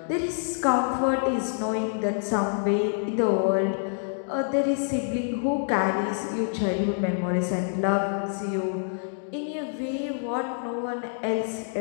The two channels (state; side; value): silent; right; digital silence